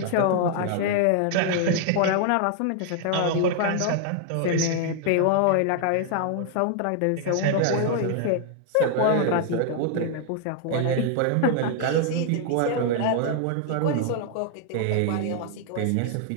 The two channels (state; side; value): different; both; correlation 0.00